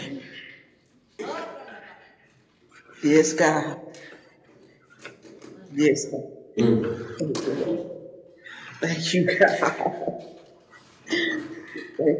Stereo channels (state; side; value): identical; both; correlation 1.00